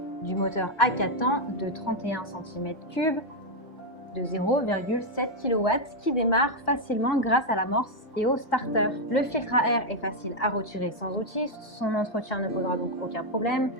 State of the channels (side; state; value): right; late; 2.5 ms